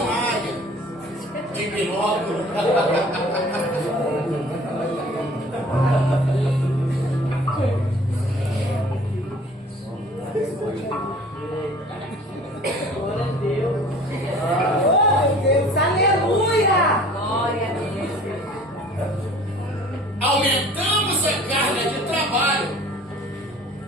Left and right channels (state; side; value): normal; both; correlation 0.49